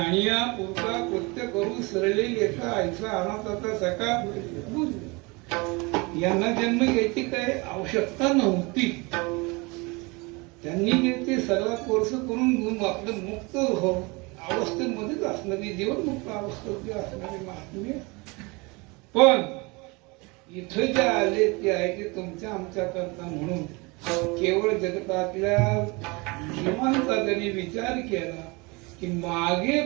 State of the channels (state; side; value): quieter; left; 26.8 dB